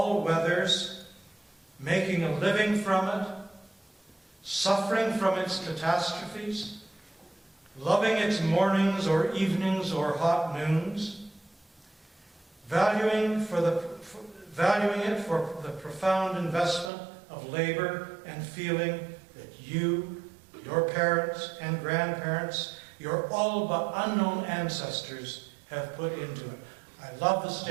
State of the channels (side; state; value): left; drops out; at 16.9 s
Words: weathers, making a living from it, suffering from its catastrophes, loving its mornings or evenings or hot noons, valuing it for the profound investment of labor and feeling that you, your parents and grandparents, your all but unknown ancestors have put into it. I love the